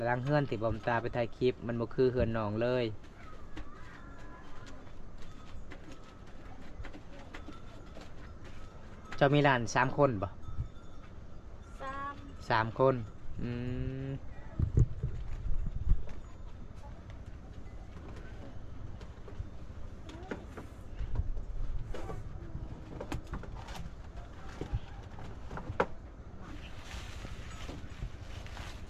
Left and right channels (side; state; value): both; identical; correlation 1.00